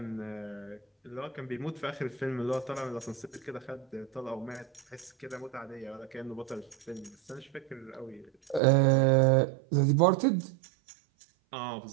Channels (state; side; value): drops out; left; at 8.6 s